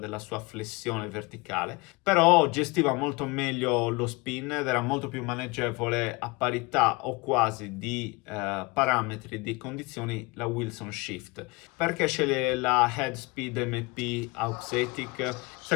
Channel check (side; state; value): right; quieter; 25.6 dB